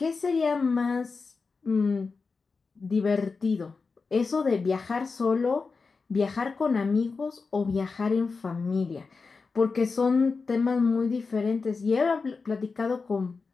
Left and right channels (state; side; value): quieter; right; 4.5 dB